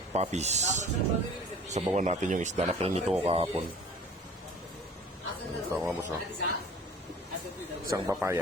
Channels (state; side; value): normal; both; correlation 0.46